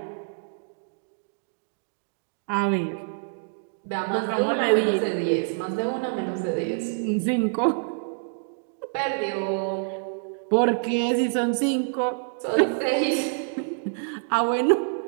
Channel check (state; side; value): silent; left; digital silence